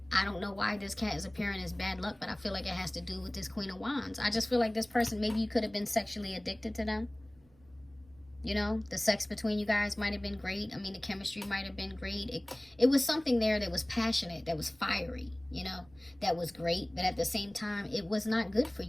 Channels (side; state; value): right; noise; rumble, 28 dB below the sound